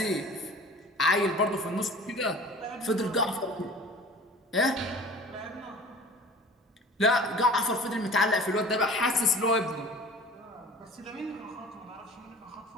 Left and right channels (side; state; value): both; normal; correlation 0.43